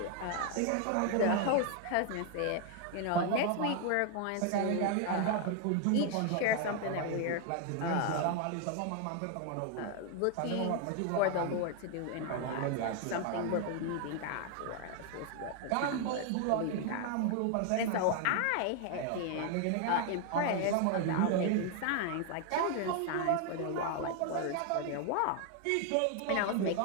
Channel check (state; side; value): different; both; correlation 0.00